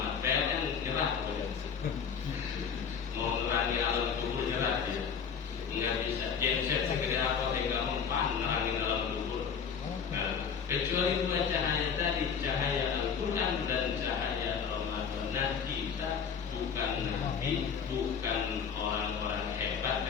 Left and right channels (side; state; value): right; quieter; 6.8 dB